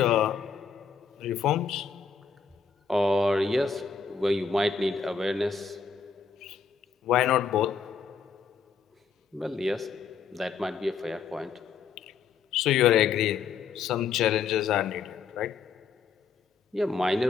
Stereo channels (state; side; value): quieter; right; 5.8 dB